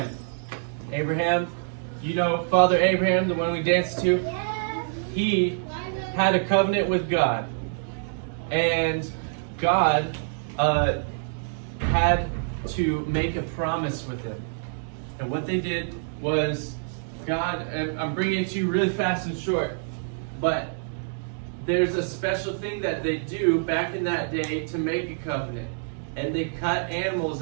Abraham, you know Father Abraham, the one we danced to? He had a covenant with God. And God had to make a promise with him. And what they did was, God, and I'm bringing it to you really fast and short, but there's a special thing that they do back in that day to make a covenant. And they cut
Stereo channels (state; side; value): silent; left; digital silence